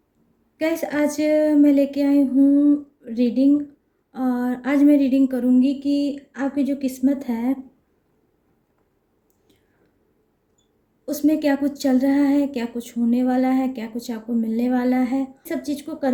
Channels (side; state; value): both; identical; correlation 1.00